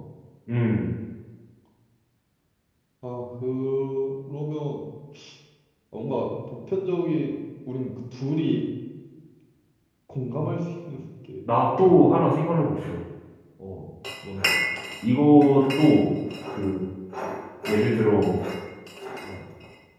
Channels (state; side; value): identical; both; correlation 1.00